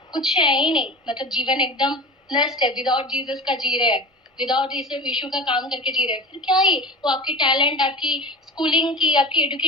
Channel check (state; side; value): normal; both; correlation 0.33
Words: कुछ है ही नहीं। मतलब जीवन एकदम नष्ट है। विदाउट जीसस का जी रहे हैं, विदाउट यीशु का काम करके जी रहे हैं, फिर क्या ही वो आपकी टैलेंट, आपकी स्कूलिंग की, आपकी